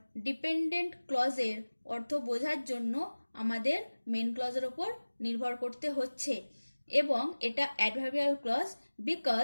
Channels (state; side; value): inverted; both; correlation -1.00